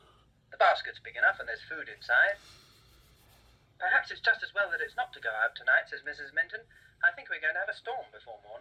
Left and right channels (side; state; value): both; identical; correlation 1.00